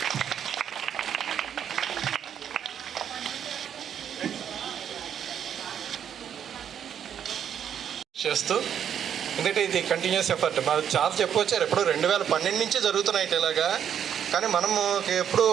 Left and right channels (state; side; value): quieter; left; 8.8 dB